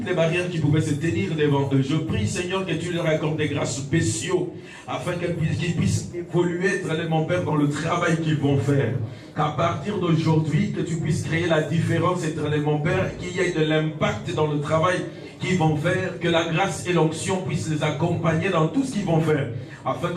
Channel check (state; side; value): identical; both; correlation 1.00